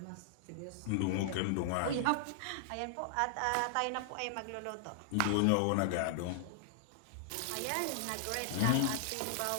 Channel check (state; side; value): different; both; correlation -0.01